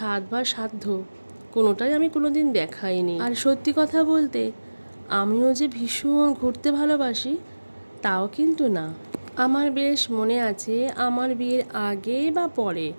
বা সাধ্য কোনোটাই আমি কোনোদিন দেখাইনি। আর সত্যি কথা বলতে আমিও যে ভীষণ ঘুরতে ভালোবাসি তাও কিন্তু না। আমার বেশ মনে আছে আমার বিয়ের আগে বা পরে,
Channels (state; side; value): inverted; both; correlation -1.00